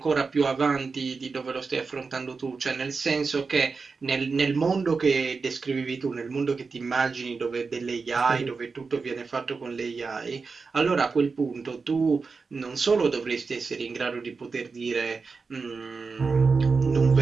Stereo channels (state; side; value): quieter; left; 4.6 dB